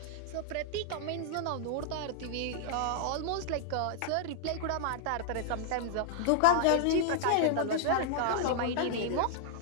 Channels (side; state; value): both; different; correlation -0.01